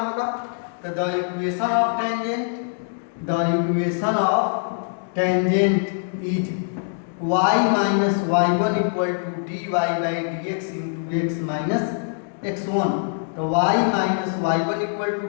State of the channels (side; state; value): right; silent; digital silence